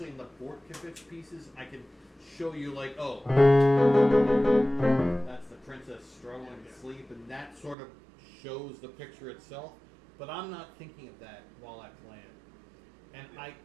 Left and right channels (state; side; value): drops out; left; at 7.8 s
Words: in the Bortkovich pieces, I can show you, like, oh, that's the princess struggling to sleep, and that sort of shows the picture itself. But I'm not thinking of that while I play it. And I